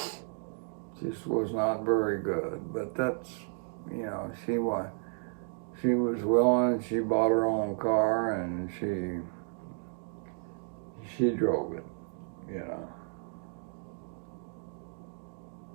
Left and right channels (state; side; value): silent; left; 56 dB below the other